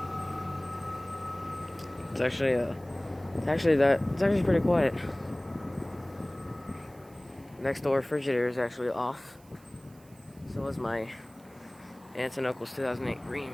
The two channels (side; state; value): right; noise; hiss, 27 dB below the sound